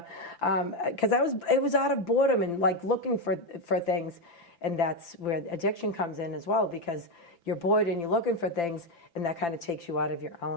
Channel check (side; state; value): right; late; 5.9 ms